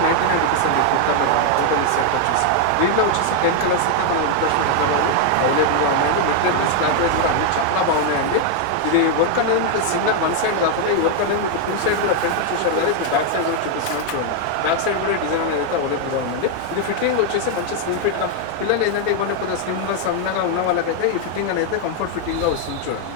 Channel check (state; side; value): different; both; correlation 0.00